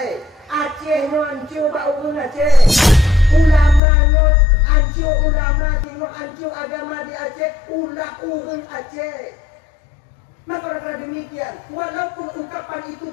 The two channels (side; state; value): right; drops out; at 3.8 s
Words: Aceh no hancur bak urun Aceh. Ulama no hancur, ulama tengok hancur agama di Aceh, ulah urun Aceh. Maka karena demikian, walaupun ungkapan itu